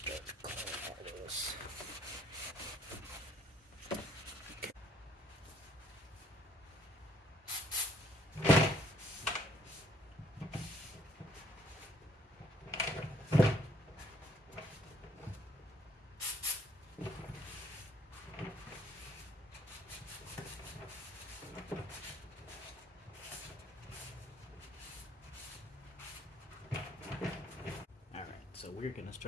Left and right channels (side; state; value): both; normal; correlation 0.64